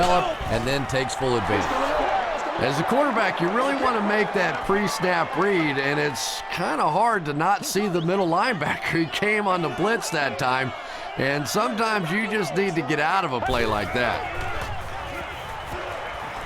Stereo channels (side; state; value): both; identical; correlation 1.00